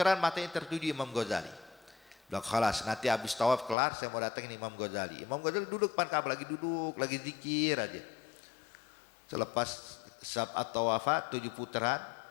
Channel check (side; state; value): right; drops out; at 3.8 s